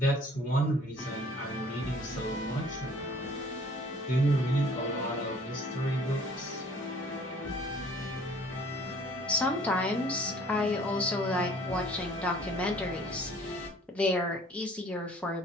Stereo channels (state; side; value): normal; both; correlation 0.54